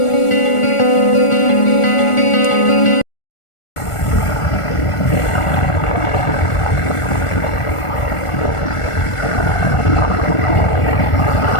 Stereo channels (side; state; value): right; late; 1.4 ms